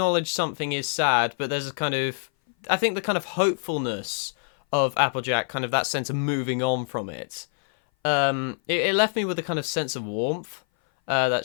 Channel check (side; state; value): right; silent; 59 dB below the other